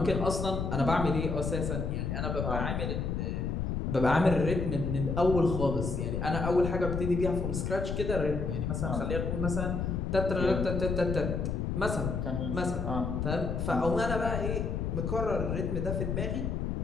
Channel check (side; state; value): left; noise; rumble, 1 dB below the sound